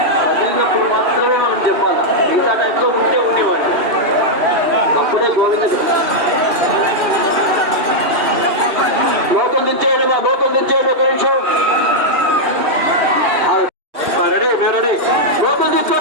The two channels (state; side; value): late; left; 2.6 ms